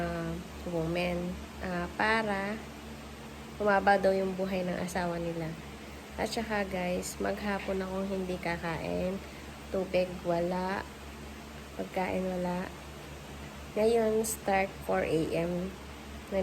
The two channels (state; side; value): identical; both; correlation 1.00